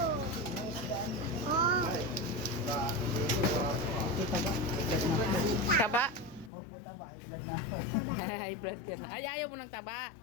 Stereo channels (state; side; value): drops out; right; at 6.5 s